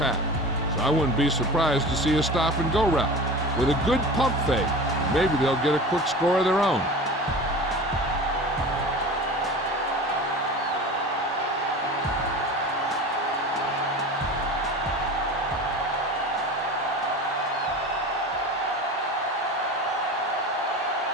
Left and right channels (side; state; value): both; normal; correlation 0.34